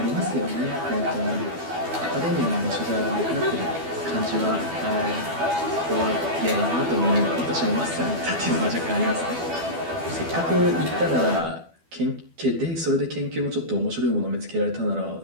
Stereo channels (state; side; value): late; left; 12 ms